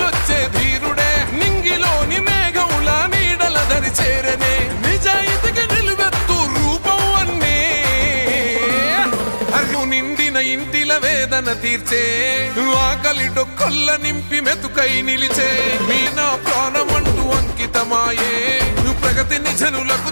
ధీరుడే నింగిలోని మేఘముల నీడల దరి చేరనే నిజాయితీకి నిలువెత్తు రూపం అన్నే అర్రు నిండిన ఇంటిల వేదన తీర్చే ఆకలి డొక్కల్ల నింపి మెతుకై నిలిచే మీ నా ప్రాణమంటూ అంకితమాయే ప్రగతిని జనులకు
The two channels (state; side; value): inverted; both; correlation -1.00